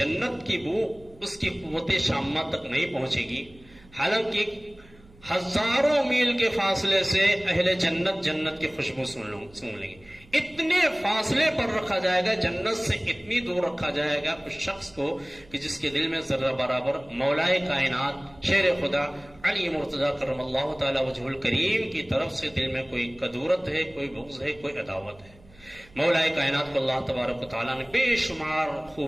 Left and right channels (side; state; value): right; noise; hum, 25 dB below the sound